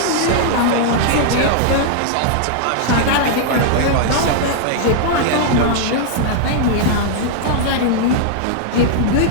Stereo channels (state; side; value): different; both; correlation -0.01